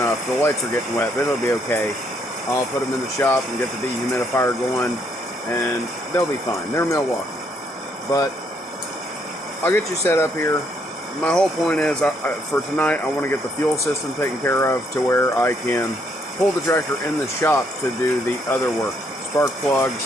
The lights are getting wet, but it'll be okay. I'll put them in the shop and get the dehumidifier going, and they'll be fine. They're Milwaukee. But I'll get you set up here. My whole point is, for tonight, I want to get the fuel system taken care of to where I can pull the tractor in the shop to do the other work. Spark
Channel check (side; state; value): both; normal; correlation 0.71